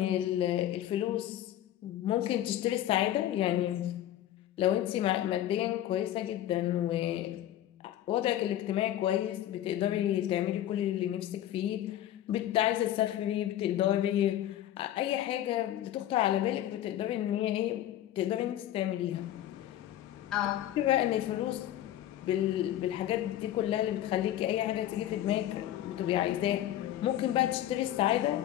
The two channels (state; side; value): quieter; right; 12.5 dB